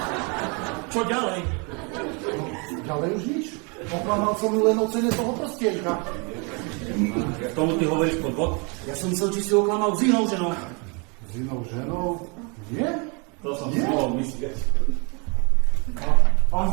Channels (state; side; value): quieter; left; 32.8 dB